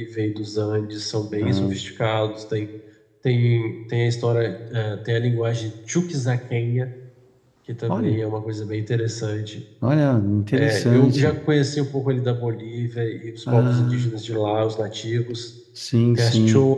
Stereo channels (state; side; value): identical; both; correlation 1.00